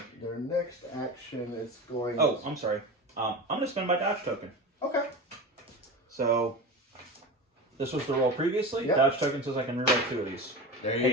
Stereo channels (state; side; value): normal; both; correlation 0.27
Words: Their next action is going... Oh, I'm sorry. I'm going to spend my dodge token. Okay. So this was the roll previously. Yep. Dodge token says I can reroll 2 of these. There you